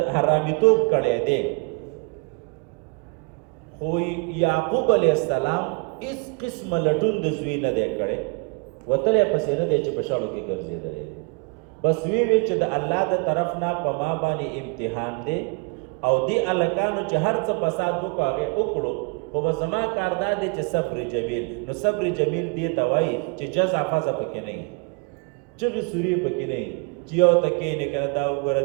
حرامیتوب کړی دی، خو یعقوب علیه السلام هېڅ قسمه لټون د زوی نه دی کړی، وتلی پسې نه دی چې په شاړو کې ګرځېدلی دی. بس وی چې د الله د طرف نه په ما باندې امتحان دی او دی هلکانو چې هر څه فساد وکړو هغې وکړو، خو زما کار دا دی چې صبر جمیل. نو صبر جمیل دې ته وایي چې جزع فزع پکې نه وي، چغې سورې پکې نه وي، چې یو ته کښېنې که نه دا وګوره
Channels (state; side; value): quieter; left; 31.0 dB